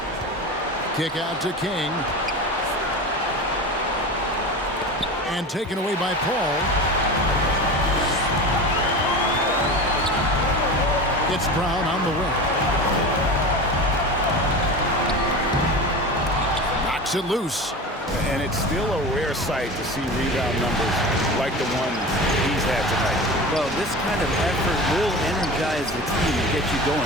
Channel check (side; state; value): both; normal; correlation 0.30